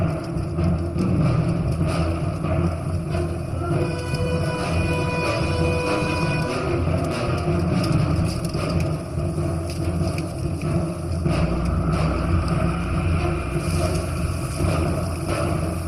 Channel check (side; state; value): both; identical; correlation 1.00